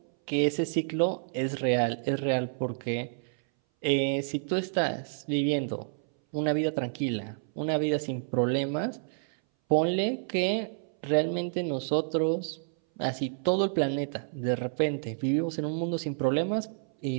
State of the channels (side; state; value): left; silent; 58 dB below the other